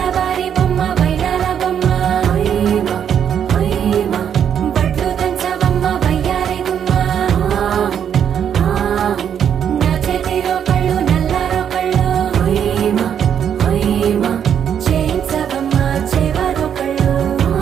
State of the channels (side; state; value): left; quieter; 8.6 dB